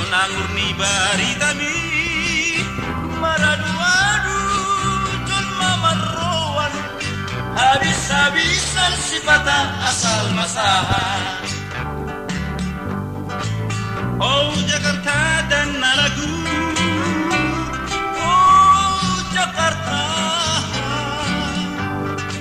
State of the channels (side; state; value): both; identical; correlation 1.00